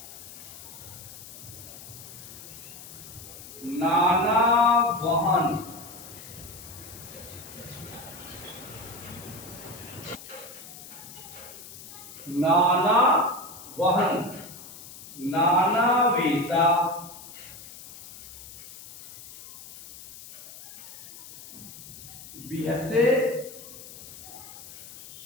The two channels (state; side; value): noise; left; hiss, 15 dB below the sound